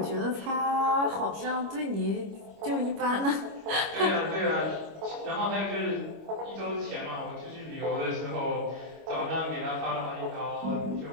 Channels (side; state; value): left; late; 25 ms